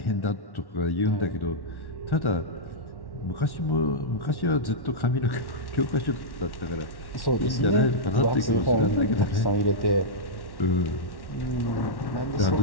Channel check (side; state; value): right; late; 1.1 ms